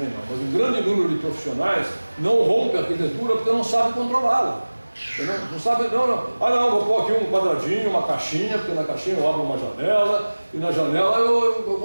não, mas um grande número de profissionais não rompe a arquitetura porque não sabe controlá-la. Não sabe, não, vou pôr aqui um quadradinho, uma caixinha, porque na caixinha eu abro uma janela e na janela eu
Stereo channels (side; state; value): both; inverted; correlation -1.00